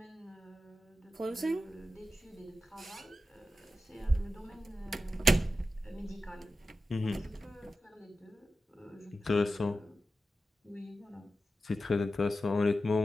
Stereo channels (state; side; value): normal; both; correlation 0.93